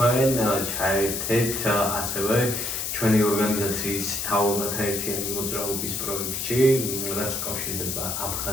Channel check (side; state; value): left; noise; hiss, 3 dB below the sound